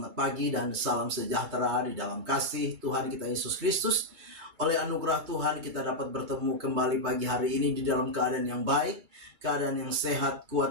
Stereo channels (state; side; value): late; left; 2.3 ms